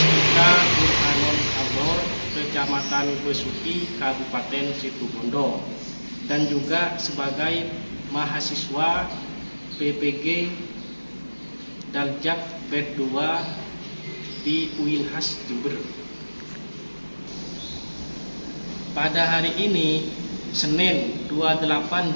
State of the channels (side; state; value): both; inverted; correlation -1.00